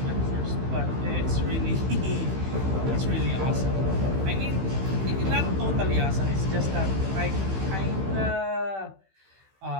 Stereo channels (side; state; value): left; late; 15 ms